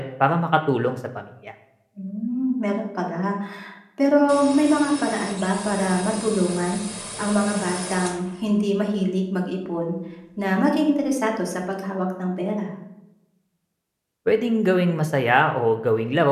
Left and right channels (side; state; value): both; identical; correlation 1.00